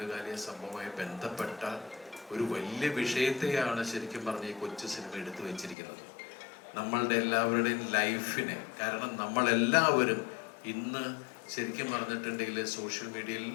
സംഭവമായി ബന്ധപ്പെട്ട ഒരു വലിയ വിഷയത്തെയാണ് ശരിക്കും പറഞ്ഞ ഈ കൊച്ചു സിനിമ എടുത്തു വെച്ചിരിക്കുന്നത്. നമ്മളുടെ എല്ലാവരുടെയും ലൈഫിനെ, കാരണം നമ്മളെല്ലാവരും ഇന്ന് ശരിക്കും പറഞ്ഞിട്ടുണ്ടെങ്കിൽ സോഷ്യൽ മീഡിയയിൽ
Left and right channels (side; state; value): right; drops out; at 5.8 s